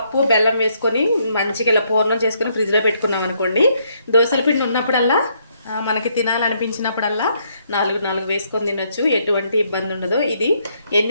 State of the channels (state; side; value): inverted; both; correlation -0.72